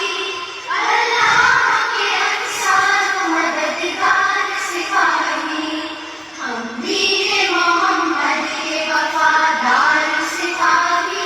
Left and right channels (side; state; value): both; identical; correlation 1.00